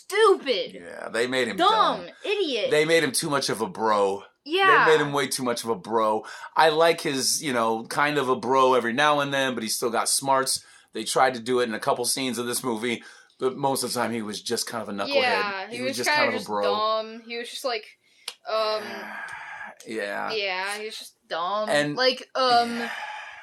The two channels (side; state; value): both; identical; correlation 1.00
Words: Yeah, they made him dumb. Idiot. They made him too much of a bro. Yeah. They made him way too much of a bro. I like his, kind of a bro every now and then, but he's still got smarts. They tried to do it in a couple scenes of this movie, but most of the time he was just kind of a knucklehead. Yeah, he was just kind of a bro. Dumb. He was just like, Yeah. Yeah, he was just dumb. And like,